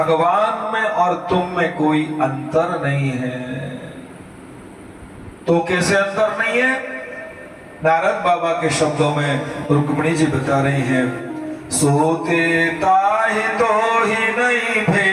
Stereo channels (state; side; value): identical; both; correlation 1.00